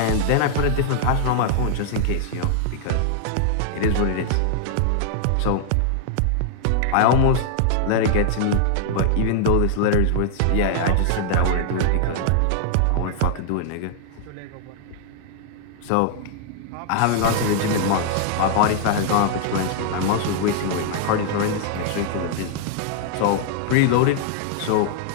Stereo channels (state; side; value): different; both; correlation -0.01